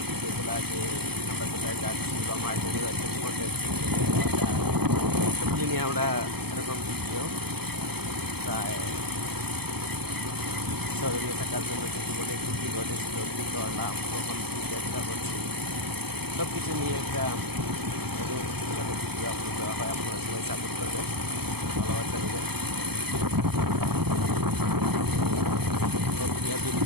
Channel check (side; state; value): left; late; 0.97 ms